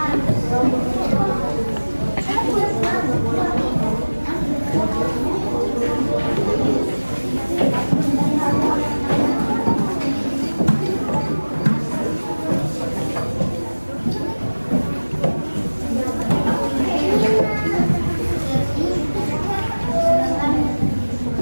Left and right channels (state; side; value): inverted; both; correlation -1.00